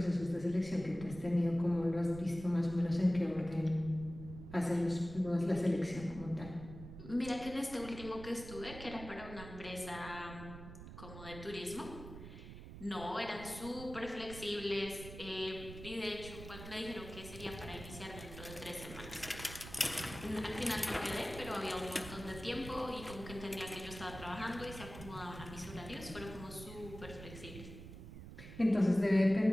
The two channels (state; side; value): noise; right; rumble, 12 dB below the sound